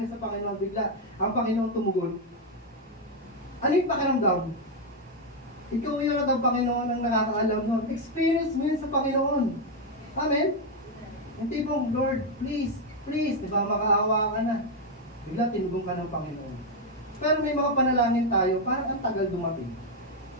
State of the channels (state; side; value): normal; both; correlation 0.03